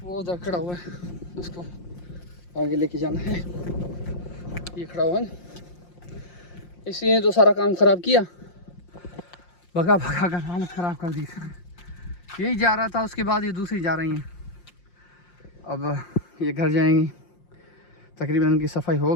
वो उधर खड़ा हुआ है, उसको आगे लेके जाना है। ये खड़ा हुआ है, इसलिए तो सारा काम ख़राब किया, भगा भगा कर हालत ख़राब कर दी। यही जा रहा था, उसके बाद ये दूसरी जा रही हैं। अब ये घर जाएंगी, तकरीबन उनकी सफाई हो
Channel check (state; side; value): late; right; 5.7 ms